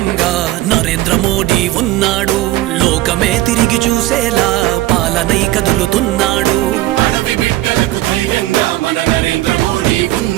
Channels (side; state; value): left; quieter; 16.2 dB